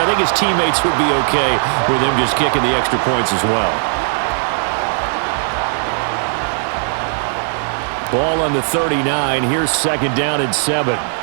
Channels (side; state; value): left; silent; 57 dB below the other